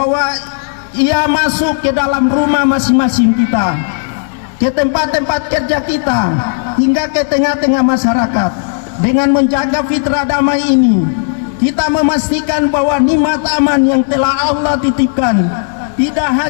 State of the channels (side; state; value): right; silent; digital silence